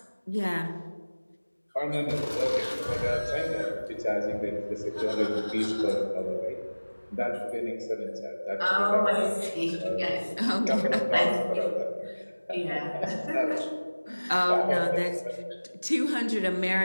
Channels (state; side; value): inverted; both; correlation -1.00